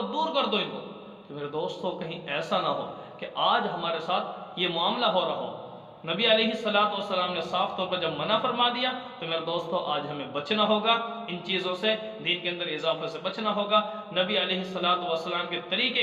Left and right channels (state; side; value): identical; both; correlation 1.00